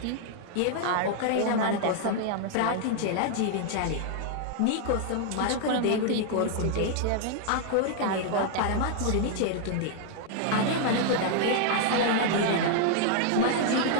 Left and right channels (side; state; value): both; different; correlation 0.00